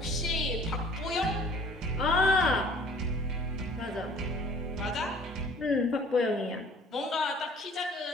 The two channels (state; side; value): normal; both; correlation 0.52